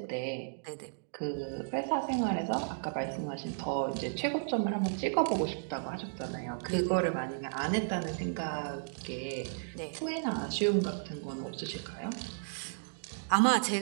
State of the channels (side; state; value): left; silent; digital silence